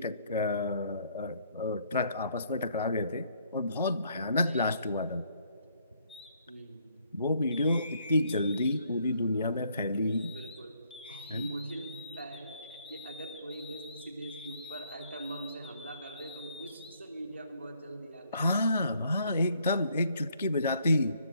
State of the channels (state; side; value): inverted; both; correlation -0.67